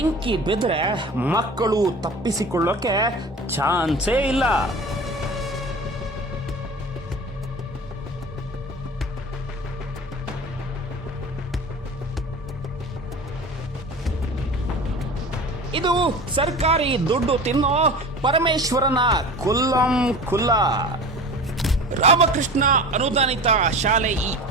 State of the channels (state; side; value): normal; both; correlation 0.36